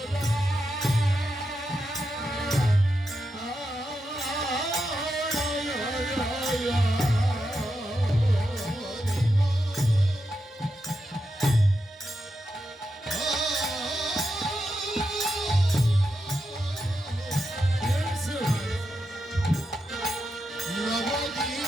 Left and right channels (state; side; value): normal; both; correlation 0.86